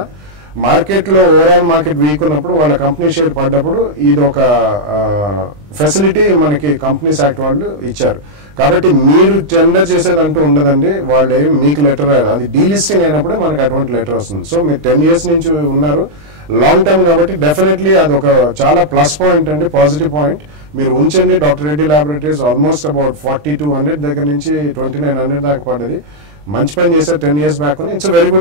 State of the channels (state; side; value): late; left; 20 ms